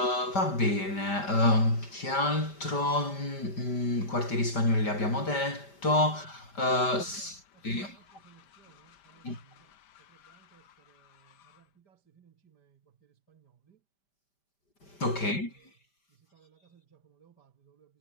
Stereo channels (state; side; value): late; right; 5.1 ms